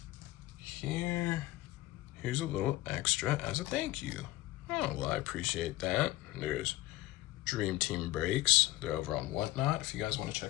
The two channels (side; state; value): right; quieter; 17.8 dB